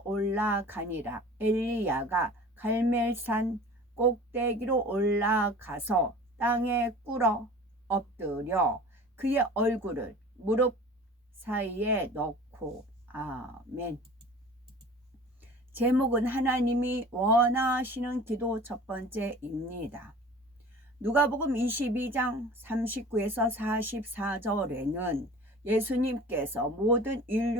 올라가니라. 엘리야가 갈멜산 꼭대기로 올라가서 땅에 꿇어 엎드려 그의 얼굴을 무릎 사이에 넣고. 아멘. 제목은 하나님이 원하시는 기도 첫 번째입니다. 누가복음 22장 39에서 44절에는 예수님께서 모든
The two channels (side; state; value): both; normal; correlation 0.42